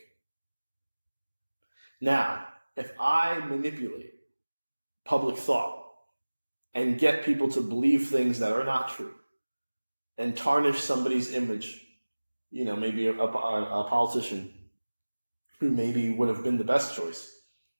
Now, if I manipulate public thought and get people to believe things that are not true and tarnish somebody's image, maybe a politician who maybe would have been the best choice,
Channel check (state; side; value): inverted; both; correlation -1.00